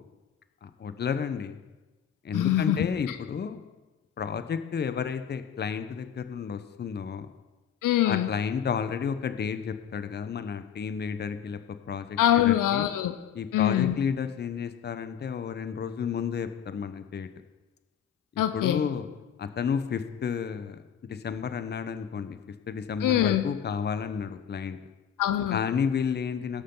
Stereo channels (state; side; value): quieter; right; 8.6 dB